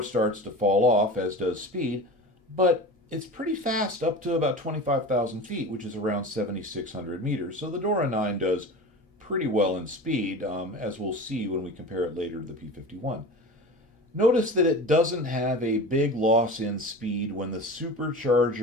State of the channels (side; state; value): both; normal; correlation 0.33